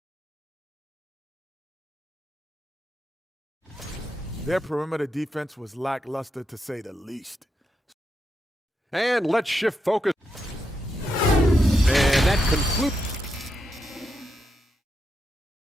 Their perimeter defense was lackluster, to say the least. And let's shift focus. And that concludes.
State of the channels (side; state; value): both; normal; correlation 0.84